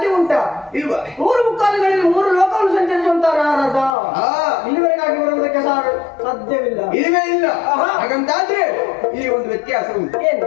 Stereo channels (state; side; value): drops out; right; at 4.0 s